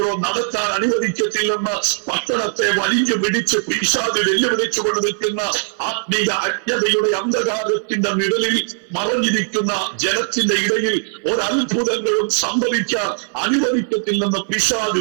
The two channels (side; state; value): left; silent; 60 dB below the other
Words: നടത്താൻ അനുവദിക്കത്തില്ലെന്ന് പട്ടണത്തെ വലിഞ്ഞു പിടിച്ച് പിശാച് വെല്ലുവിളിച്ചുകൊണ്ട് നിൽക്കുന്ന ആത്മീയ അജ്ഞതയുടെ അന്ധകാരത്തിന്റെ നിഴലിൽ മറഞ്ഞിരിക്കുന്ന ജനത്തിന്റെ ഇടയിൽ ഒരത്ഭുതങ്ങളും സംഭവിക്കാൻ അനുവദിക്കത്തില്ലെന്ന്